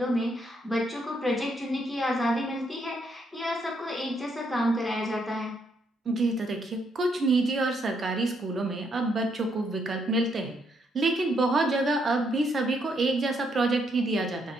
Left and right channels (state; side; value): normal; both; correlation 0.74